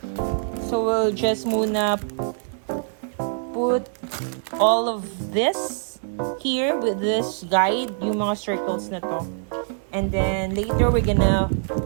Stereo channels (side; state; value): left; silent; digital silence